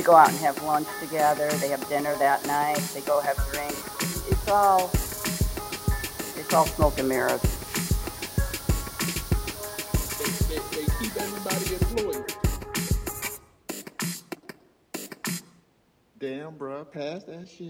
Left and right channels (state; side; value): identical; both; correlation 1.00